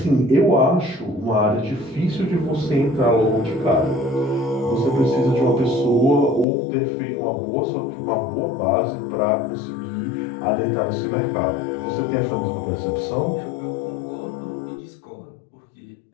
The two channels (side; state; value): right; drops out; at 6.5 s